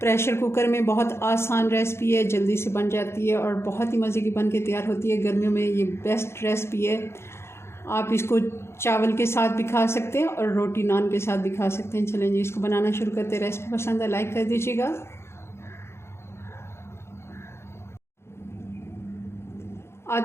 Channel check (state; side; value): late; right; 0.12 ms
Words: प्रेशर कुकर में बहुत आसान रेसिपी है, जल्दी से बन जाती है और बहुत ही मज़े की बन के तैयार होती है। गर्मियों में ये बेस्ट रेसिपी है। आप इसको चावल के साथ भी खा सकते हैं और रोटी नान के साथ भी खा सकते हैं। चलें जी, इसको बनाना शुरू करते हैं। रेसिपी पसंद है लाइक कर दीजिएगा।